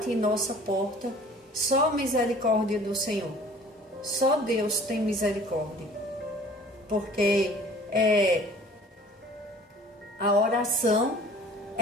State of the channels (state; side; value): normal; both; correlation 0.49